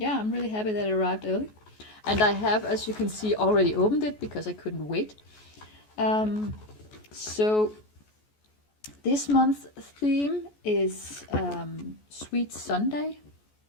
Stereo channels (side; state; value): right; late; 14 ms